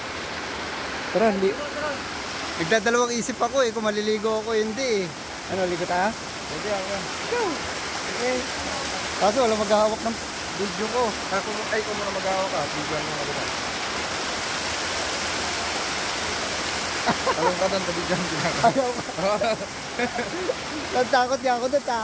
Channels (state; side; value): identical; both; correlation 1.00